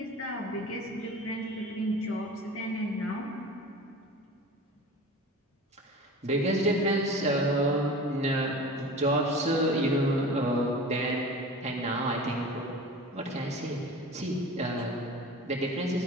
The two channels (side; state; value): both; normal; correlation 0.37